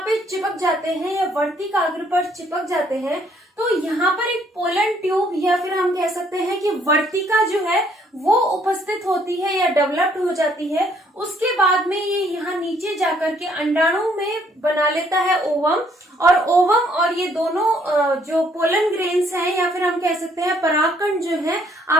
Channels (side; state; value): both; normal; correlation 0.66